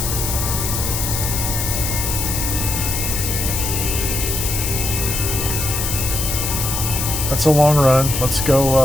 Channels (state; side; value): noise; left; hiss, 2 dB below the sound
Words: That's a long run. Let's